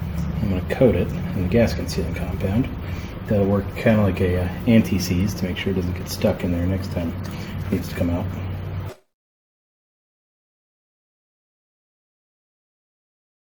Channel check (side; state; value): both; identical; correlation 1.00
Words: I'm going to coat it in the gasket sealing compound. That'll work kind of like a anti-seize to make sure it doesn't get stuck in there next time it needs to come out.